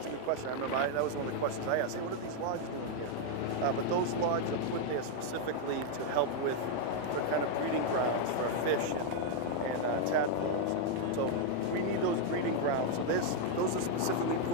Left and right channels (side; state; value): both; different; correlation 0.00